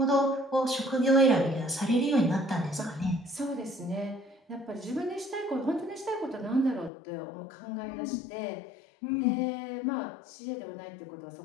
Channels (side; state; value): right; drops out; at 6.9 s